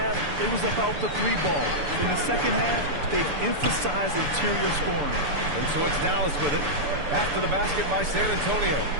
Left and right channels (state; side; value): late; left; 6.9 ms